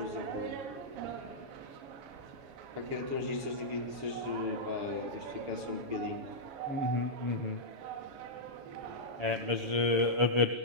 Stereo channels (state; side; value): late; left; 6.9 ms